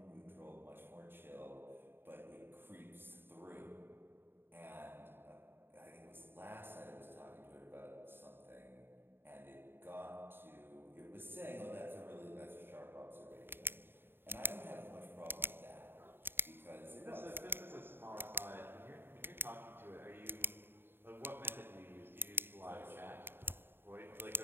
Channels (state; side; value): late; left; 0.10 ms